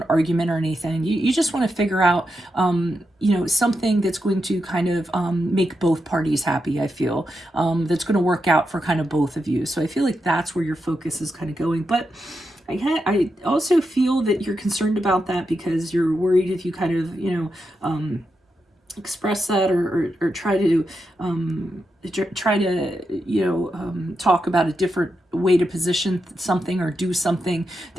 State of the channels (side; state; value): both; normal; correlation 0.86